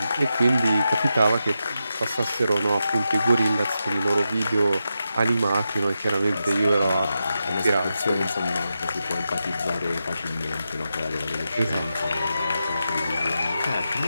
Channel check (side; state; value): both; inverted; correlation -0.88